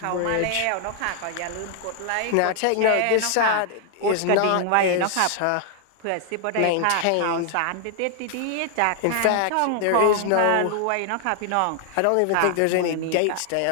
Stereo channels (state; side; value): different; both; correlation 0.00